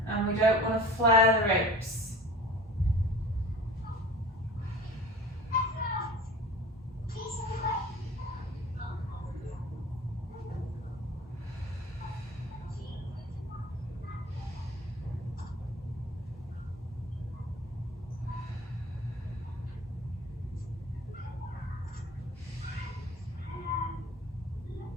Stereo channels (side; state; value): both; normal; correlation 0.42